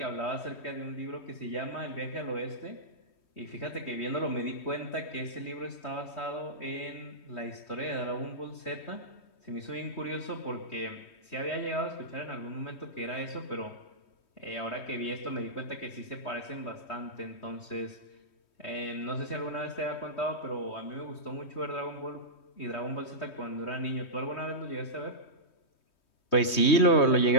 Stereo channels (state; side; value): late; right; 3.2 ms